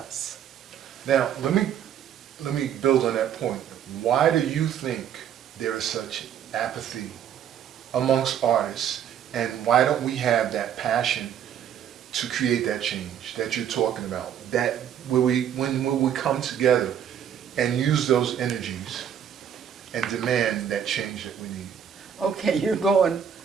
Now, let me build on that point. Why do you think there is such apathy amongst artists, and why don't we have that passion to create that change that you're talking about? That when we come together and use those energies and demand that change that we need. Okay, you're going.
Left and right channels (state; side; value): quieter; left; 9.0 dB